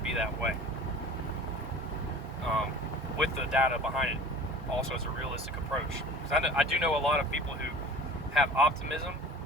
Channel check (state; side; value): normal; both; correlation 0.42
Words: be that way. With the data behind it, also as a realistic approach. Because I do know a lot of people who have optimism,